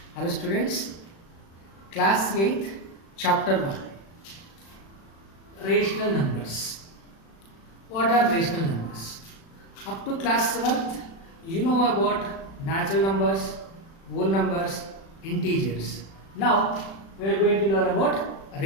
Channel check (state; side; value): late; right; 36 ms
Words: Hello students, class 8th, chapter 1, rational numbers. What are rational numbers? Up to class 7th, you know about natural numbers, whole numbers, integers. Now, we are going to learn about